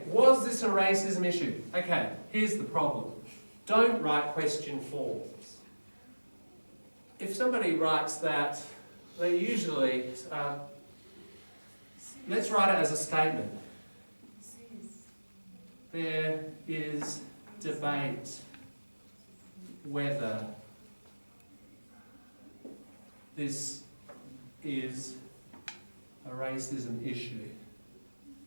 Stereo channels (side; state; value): both; inverted; correlation -1.00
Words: was this a racism issue? Okay, here's the problem. Don't write question forms. If somebody writes that, they usually, let's write it as a statement. There is debate whether this is a racism issue.